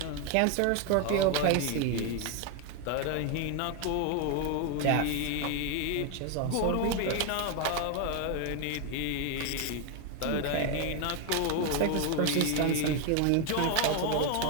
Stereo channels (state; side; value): different; both; correlation 0.01